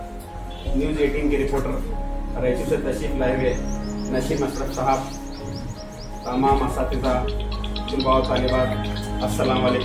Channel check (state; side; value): identical; both; correlation 1.00